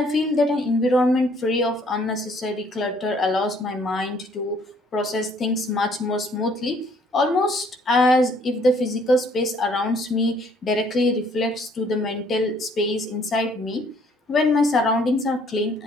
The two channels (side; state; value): both; normal; correlation 0.62